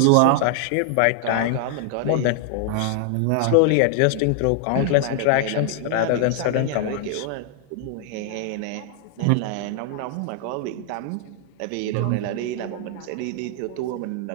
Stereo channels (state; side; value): different; both; correlation 0.00